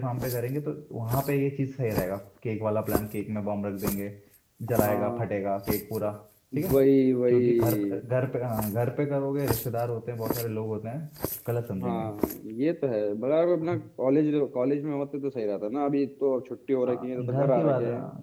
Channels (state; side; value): identical; both; correlation 1.00